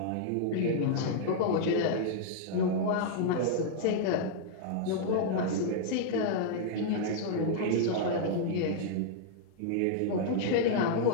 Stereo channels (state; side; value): different; both; correlation -0.01